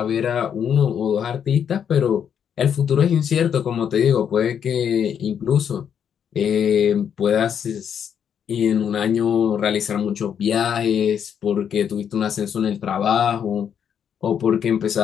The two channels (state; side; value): quieter; right; 8.2 dB